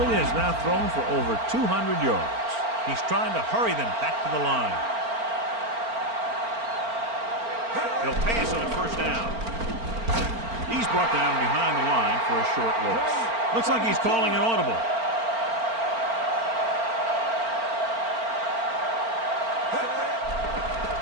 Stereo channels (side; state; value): left; late; 4.4 ms